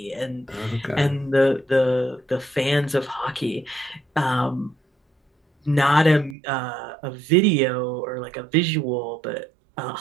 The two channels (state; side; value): drops out; left; at 6.4 s